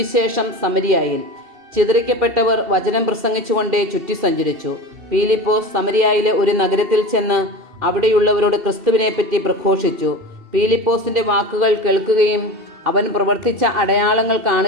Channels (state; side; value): late; left; 2.7 ms